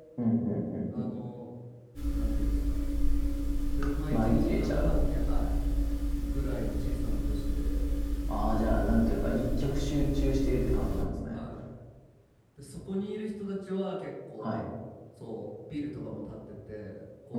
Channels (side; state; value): both; identical; correlation 1.00